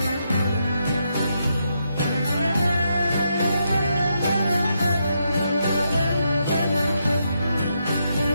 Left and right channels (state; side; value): inverted; both; correlation -0.80